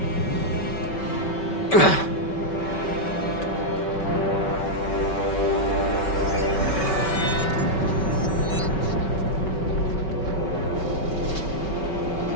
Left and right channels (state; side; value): late; right; 5.2 ms